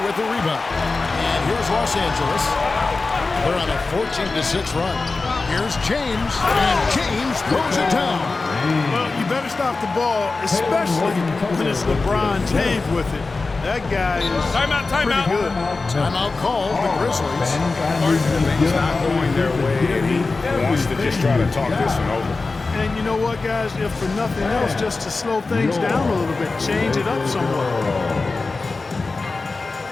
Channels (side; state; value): right; quieter; 3.8 dB